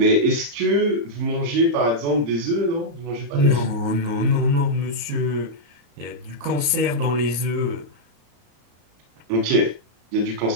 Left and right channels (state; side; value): late; left; 34 ms